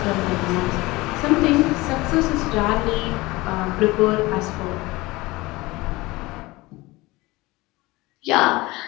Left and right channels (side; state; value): right; quieter; 21.2 dB